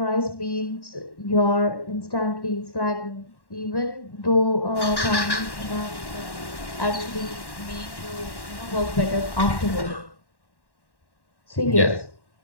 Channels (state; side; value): late; right; 1.1 ms